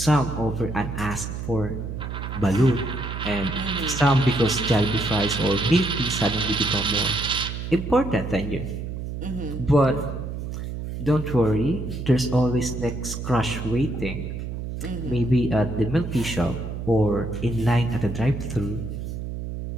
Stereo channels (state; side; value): noise; right; hum, 6 dB below the sound